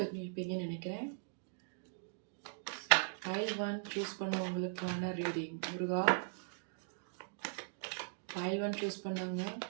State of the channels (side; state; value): left; silent; digital silence